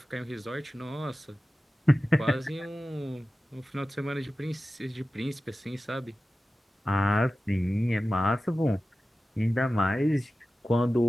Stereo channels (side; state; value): both; normal; correlation 0.95